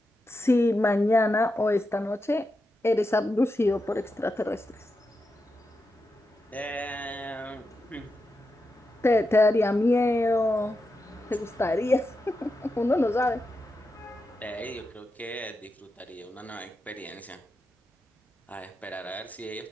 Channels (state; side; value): normal; both; correlation 0.88